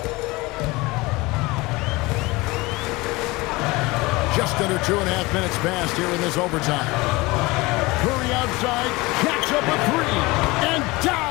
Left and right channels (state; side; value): quieter; right; 22.5 dB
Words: Just under 2.5 minutes passed here in this overtime. Curry outside, catch up a 3, and